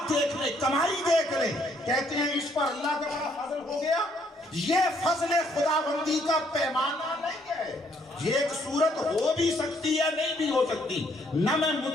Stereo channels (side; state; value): both; normal; correlation 0.68